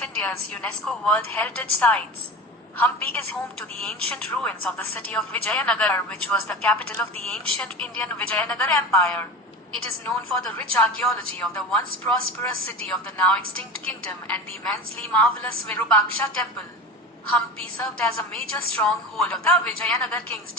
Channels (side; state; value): both; normal; correlation 0.30